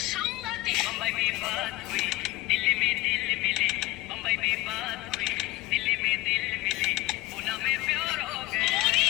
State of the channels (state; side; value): quieter; right; 19.2 dB